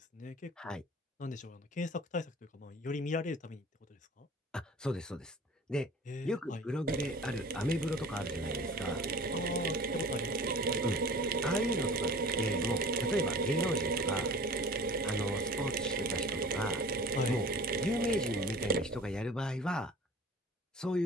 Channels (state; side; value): normal; both; correlation 0.42